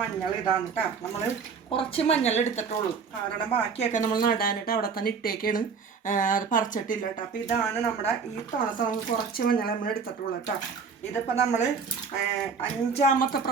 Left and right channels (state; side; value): quieter; left; 5.6 dB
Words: ഇതാണ് കേട്ടോ. നമ്മൾ കുറച്ച് മഞ്ഞൾ എടുത്തിട്ടുള്ളൂ, കാരണം ബാക്കിയൊക്കെ നമ്മൾ നടാനിട്ട് അവിടെ തന്നെ ഇട്ടേക്കാണ്, അത് പറിച്ചിട്ടില്ല കേട്ടോ. അപ്പോൾ ഇതാണ് നമ്മുടെ ഈ തുണത്തെ നമുക്ക് കുറച്ച് മഞ്ഞൾ നമ്മൾ എടുത്തിട്ടുള്ളൂ കേട്ടോ. ഇതിപ്പോൾ നമ്മൾ 5ാമത്തെ